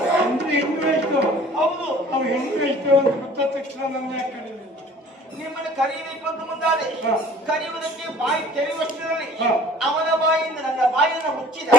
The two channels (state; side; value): normal; both; correlation 0.50